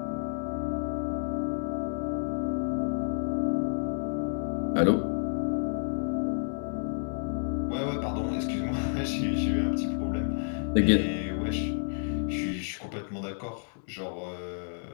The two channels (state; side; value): silent; right; 58 dB below the other